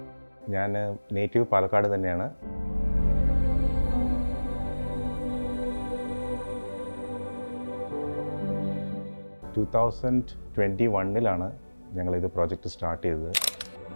ഞാൻ native Palakkad തന്നെയാണ്. To 2021 ഞങ്ങളിത് പ്രോജക്റ്റ് സ്റ്റാർട്ട് ചെയ്തത്.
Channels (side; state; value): both; inverted; correlation -1.00